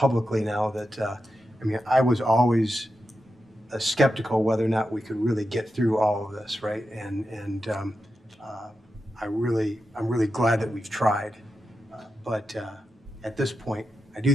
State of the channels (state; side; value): normal; both; correlation 0.89